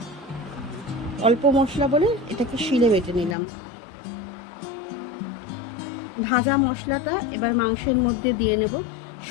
অল্প মশলা বলে এটাকে শিলে বেটে নিলাম। ভাজা মশলাটা এবার মাংসের মধ্যে দিয়ে নেব।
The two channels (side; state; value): right; drops out; at 3.4 s